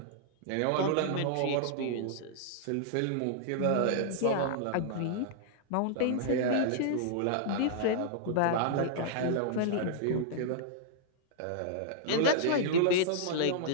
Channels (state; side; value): different; both; correlation -0.01